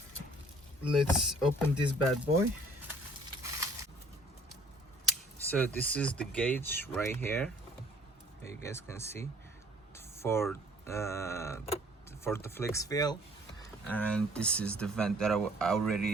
let's open this bad boy. So this is the gauge right here, you guys can see, for the flex Fuil, and this is the vent that I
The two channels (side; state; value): both; normal; correlation 0.56